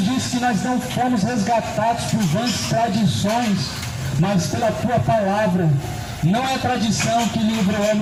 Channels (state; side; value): identical; both; correlation 1.00